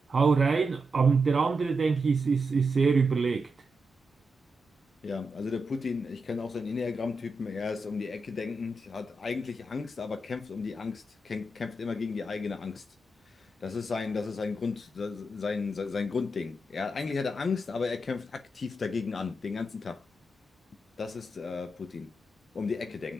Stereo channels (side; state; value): both; normal; correlation 0.86